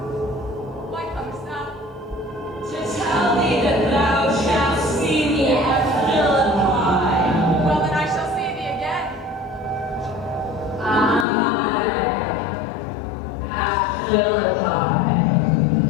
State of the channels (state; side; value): drops out; right; at 11.2 s